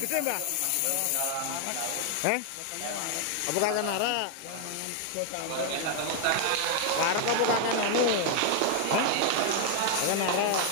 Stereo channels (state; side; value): different; both; correlation 0.00